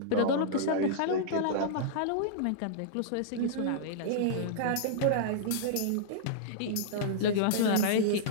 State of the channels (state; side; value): different; both; correlation -0.02